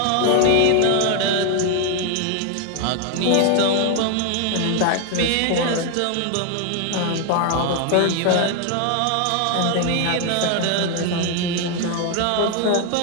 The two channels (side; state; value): both; different; correlation 0.00